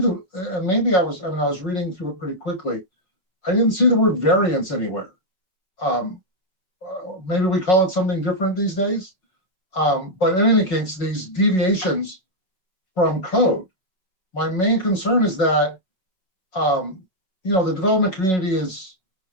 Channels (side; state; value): right; late; 5.3 ms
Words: maybe I was reading through it pretty quickly. I didn't see the word variance anywhere. Maybe we call it something different these days. But in any case, these deviations from code, my main concern is that, the development community is,